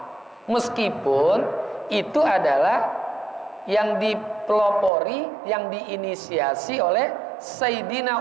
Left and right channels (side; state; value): left; drops out; at 4.9 s